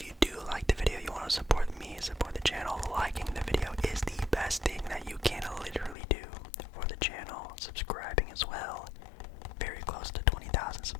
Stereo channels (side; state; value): right; drops out; at 6.0 s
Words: you do like the video, you want to support me, support the channel, liking the video is the best thing that you can literally do for the channel. Subscribing as well. Very close to 20,000